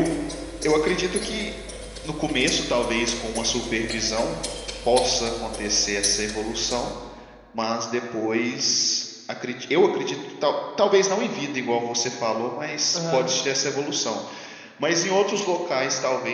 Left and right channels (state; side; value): identical; both; correlation 1.00